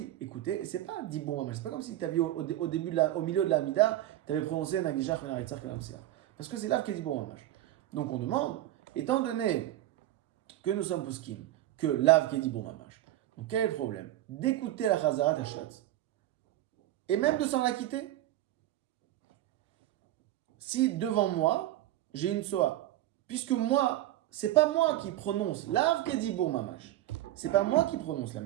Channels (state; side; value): quieter; left; 14.2 dB